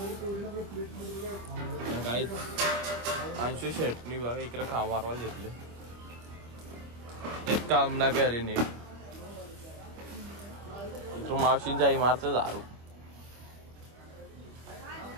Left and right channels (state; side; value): late; left; 25 ms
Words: गाईज अंशू शेटनी बघा इकडे काम मारवायला घेतले. एक काम ना करे नीट. इकडं मावशींच्या इमारत दारू